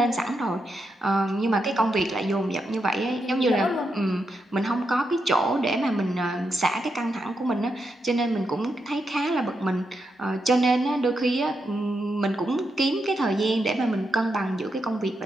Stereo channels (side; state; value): both; normal; correlation 0.84